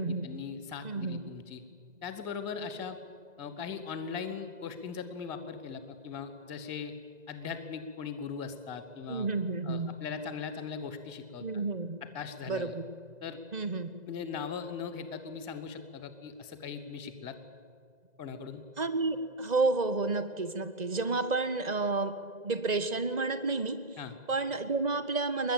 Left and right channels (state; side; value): late; left; 1.9 ms